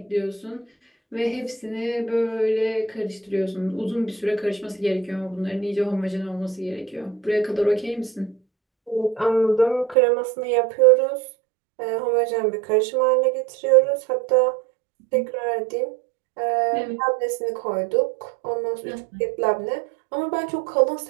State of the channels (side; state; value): left; drops out; at 10.0 s